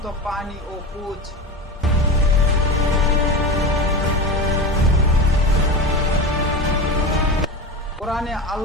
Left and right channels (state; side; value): normal; both; correlation 0.25